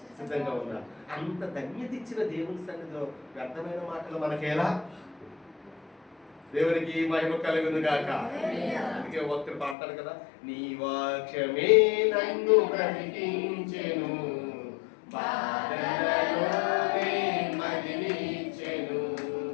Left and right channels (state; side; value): drops out; right; at 9.8 s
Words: సిద్ధంగా ఉన్నారు. అంత ధన్యత ఇచ్చిన దేవుని సన్నిధిలో వ్యర్థమైన మాటలు మనకేలా? దేవునికి మహిమ కలుగును గాక. అందుకే భక్తుడు పాడతాడు కదా, నీ వాక్యమే నన్ను బ్రతికించెను, బాధలలోనే మదిలించెను.